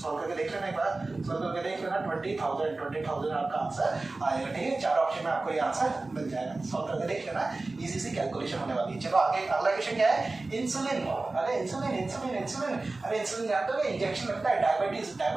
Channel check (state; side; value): quieter; left; 3.3 dB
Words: सॉल्व करके देख लेना एक बार, सॉल्व करके देख लेना 20,000 आपका आंसर आएगा। ठीक है, 4 ऑप्शन में आपको ये आंसर मिल जाएगा, सॉल्व करके देख लेना, इजी सी कैलकुलेशन होने वाली है। चलो आगे अगला क्वेश्चन क्या है, इंसुलिन। अरे इंसुलिन जानते हो, इंजेक्शन लगता है